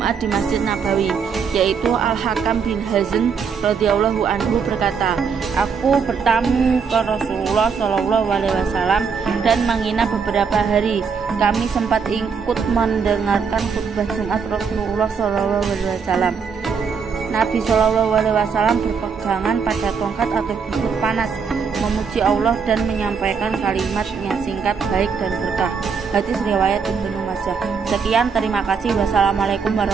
di Masjid Nabawi, yaitu Al-Hakam bin Hazm radhiyallahu anhu berkata, "Aku bertamu ke Rasulullah SAW dan menginap beberapa hari. Kami sempat ikut mendengarkan khutbah Jumat Rasulullah SAW. Nabi SAW berpegangan pada tongkat atau busur panas, memuji Allah dan menyampaikan kalimat yang singkat, baik dan berkah." Hadis riwayat Ibnu Majah. Sekian, terima kasih. Wassalamualaikum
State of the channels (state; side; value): quieter; left; 5.9 dB